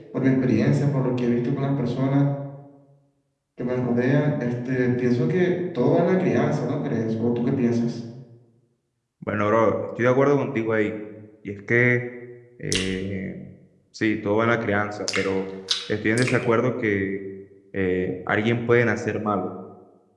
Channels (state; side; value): identical; both; correlation 1.00